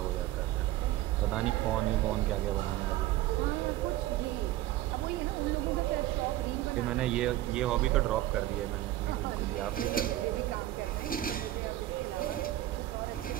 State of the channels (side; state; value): left; quieter; 14.9 dB